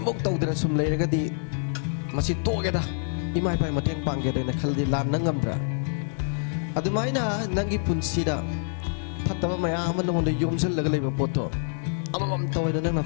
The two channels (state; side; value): silent; right; digital silence